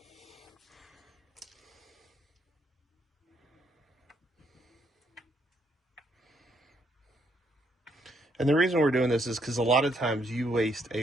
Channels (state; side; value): normal; both; correlation 0.73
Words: And the reason we're doing this is because a lot of times you waste